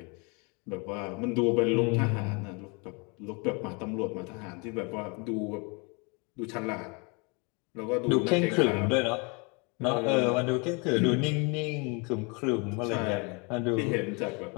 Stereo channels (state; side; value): quieter; right; 31.4 dB